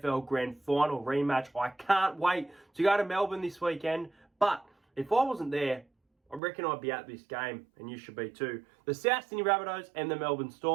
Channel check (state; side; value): drops out; left; at 6.4 s